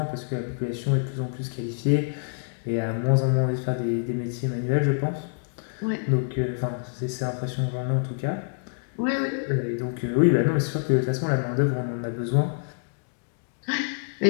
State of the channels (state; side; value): silent; right; digital silence